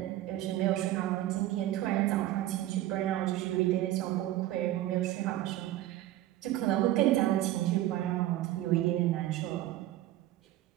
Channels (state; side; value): quieter; left; 14.5 dB